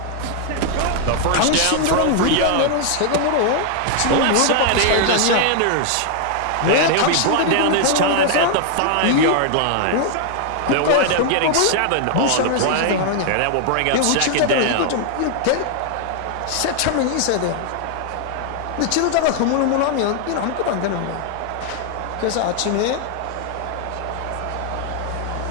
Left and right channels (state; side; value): different; both; correlation 0.00